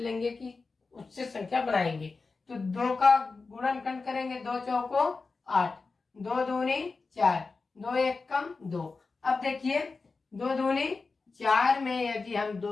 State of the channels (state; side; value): quieter; right; 4.2 dB